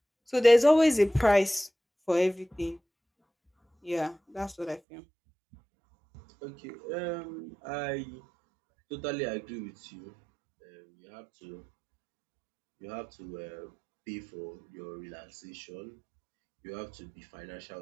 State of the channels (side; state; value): left; drops out; at 4.8 s